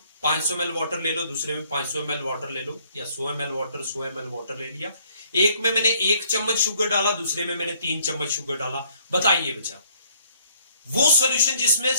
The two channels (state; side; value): inverted; both; correlation -0.64